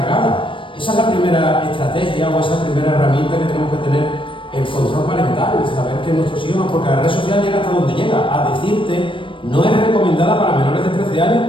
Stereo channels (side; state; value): right; late; 0.25 ms